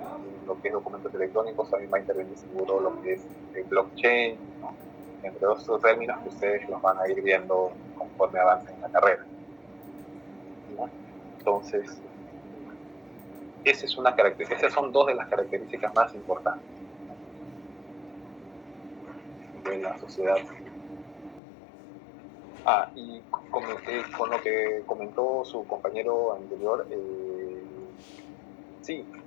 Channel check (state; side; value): drops out; right; at 21.4 s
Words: lo que es documentos electrónicos, también va a intervenir seguro lo que es el blockchain, ¿no? Entre otros términos que ustedes los van a ir viendo conforme avancen en la carrera, ¿no? Entonces, esas son dos de las características más importantes, ¿no? De la sociedad. Y con lo que comentó su compañero anterior, sí,